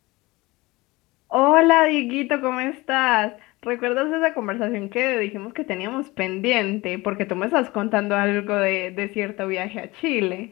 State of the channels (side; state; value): right; quieter; 21.8 dB